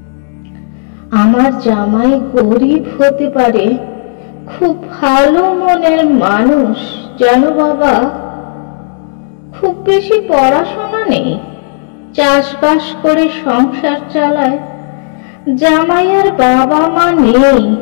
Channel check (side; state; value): right; silent; digital silence